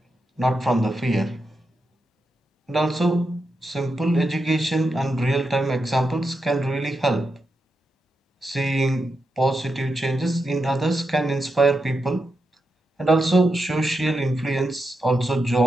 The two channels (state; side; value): normal; both; correlation 0.86